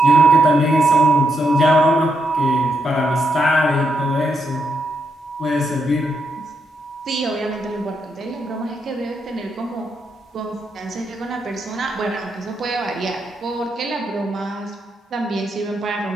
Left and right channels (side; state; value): both; normal; correlation 0.80